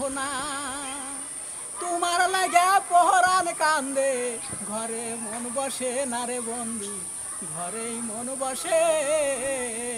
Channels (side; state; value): both; identical; correlation 1.00